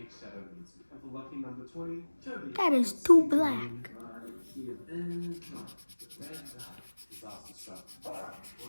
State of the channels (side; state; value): both; inverted; correlation -1.00